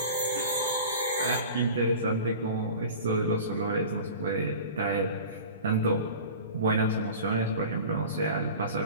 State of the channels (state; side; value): inverted; both; correlation -0.38